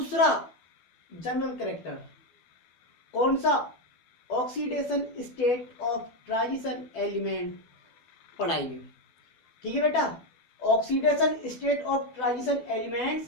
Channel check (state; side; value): late; right; 12 ms